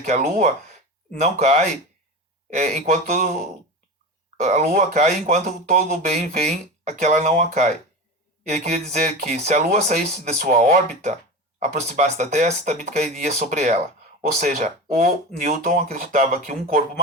que a Lua não cai enquanto a Lua cai enquanto todo o bem vem a que ela não a cai. Ele queria dizer que se a Lua saísse de sua órbita, aproximasse da Terra, também cairia sobre ela. Ou seja, o Newton acreditava que um corpo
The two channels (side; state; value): both; normal; correlation 0.26